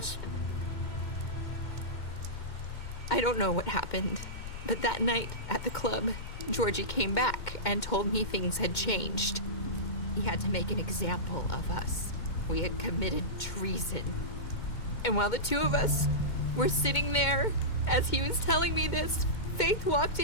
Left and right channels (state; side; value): late; right; 2.1 ms